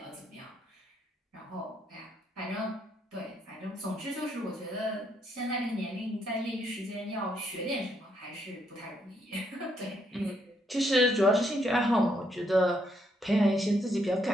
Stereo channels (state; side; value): normal; both; correlation 0.74